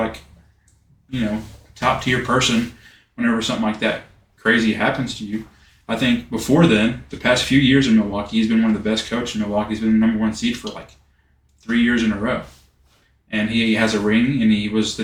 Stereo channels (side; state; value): both; identical; correlation 1.00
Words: top tier person whenever something like that crazy happens to you. I think before then, the past few years in Milwaukee, he's been one of the best coaches in Milwaukee. He's been the number 1 seed for like 3 years in a row. And he has a ring, and he was the